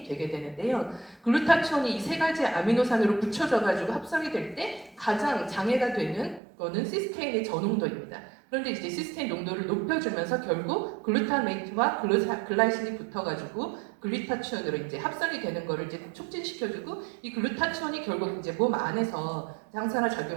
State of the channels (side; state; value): left; drops out; at 6.4 s